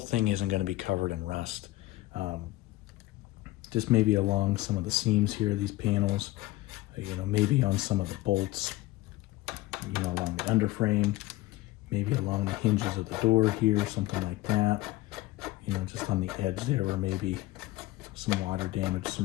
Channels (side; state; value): right; quieter; 18.0 dB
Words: isn't going to be covered in rust. Just maybe along some of the seams here, these panels, you know, maybe on some of the bolts, you know, along the underframe, maybe along the hinges of the door here, something like that. You know, just on the edge there where maybe some water damage,